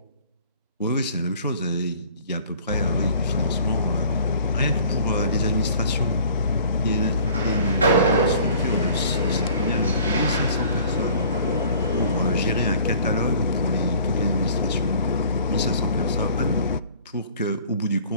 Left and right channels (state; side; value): inverted; both; correlation -0.51